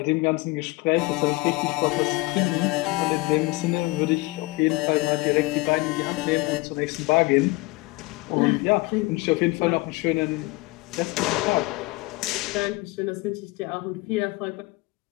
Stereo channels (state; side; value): quieter; right; 22.9 dB